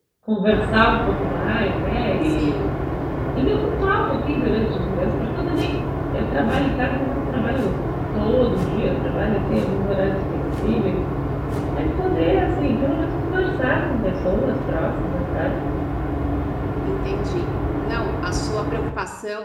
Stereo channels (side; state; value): both; identical; correlation 1.00